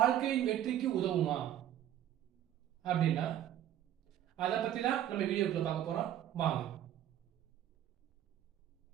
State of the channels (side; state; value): left; quieter; 11.5 dB